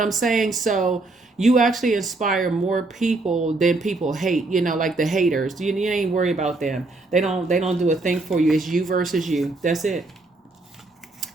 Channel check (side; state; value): left; quieter; 3.2 dB